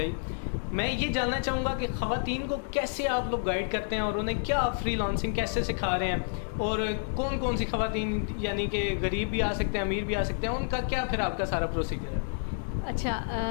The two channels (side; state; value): right; silent; digital silence